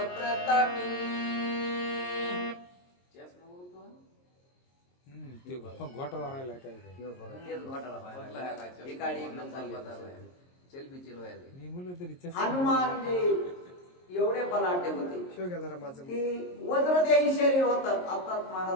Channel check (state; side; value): late; right; 22 ms